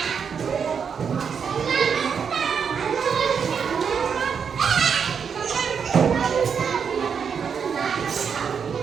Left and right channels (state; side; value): quieter; left; 6.7 dB